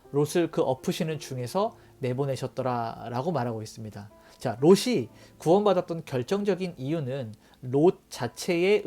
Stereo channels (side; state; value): both; identical; correlation 1.00